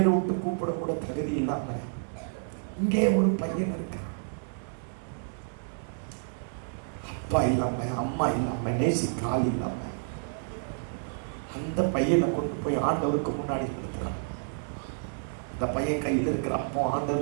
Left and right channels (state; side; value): silent; left; digital silence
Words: விட்டு கூப்பிட கூட தகுதி இல்லாம இங்கே ஒரு பையன் இருக்கு. அப்பா இல்லாம, அம்மா இல்லாம, நேசிக்க ஆள் இல்லாம அந்த பையனை கொண்டு போய் ஆண்டவருக்கு முன்னாடி கொடுக்குறான். இந்த பையன் கையில் இருக்கிற அப்போ